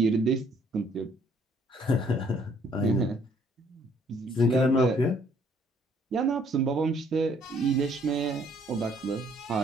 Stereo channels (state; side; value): normal; both; correlation 0.63